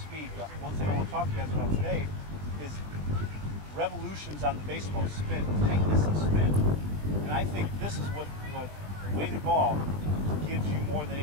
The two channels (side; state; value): left; late; 20 ms